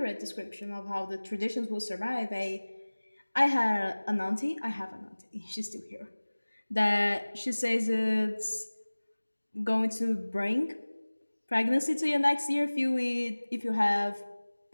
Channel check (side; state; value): both; inverted; correlation -1.00